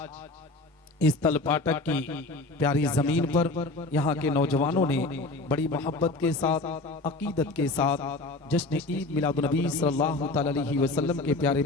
इस तलपाटक की प्यारी जमीन पर यहाँ के नौजवानों ने बड़ी मोहब्बत के साथ, अकीदत के साथ जश्न ईद मिलादुन नबी सल्लल्लाहु अलैहि वसल्लम के प्यारे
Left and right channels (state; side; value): quieter; right; 3.1 dB